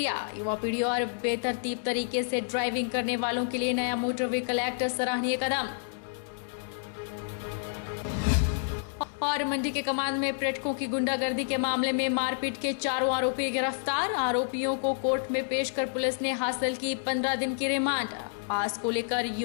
युवा पीढ़ी और बेतरतीब तरीके से ड्राइविंग करने वालों के लिए नया मोटर व्हीकल एक्ट सराहनीय कदम। और मंडी के कमांद में पर्यटकों की गुंडागर्दी के मामले में मारपीट के 4 आरोपी गिरफ्तार। आरोपियों को कोर्ट में पेश कर पुलिस ने हासिल की 15 दिन की रिमांड। पास को लेकर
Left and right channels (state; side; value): silent; right; digital silence